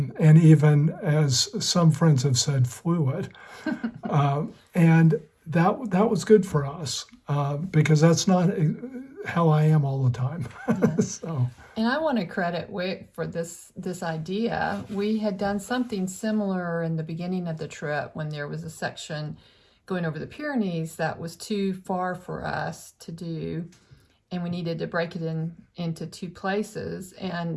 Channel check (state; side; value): identical; both; correlation 1.00